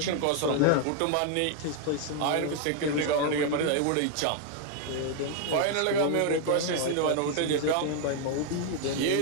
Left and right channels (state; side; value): different; both; correlation 0.00